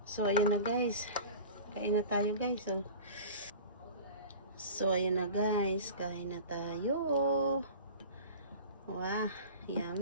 So, ayan na guys. Kain na tayo guys. So, ayan na guys. Kain na tayo. Wow.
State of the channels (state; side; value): inverted; both; correlation -0.38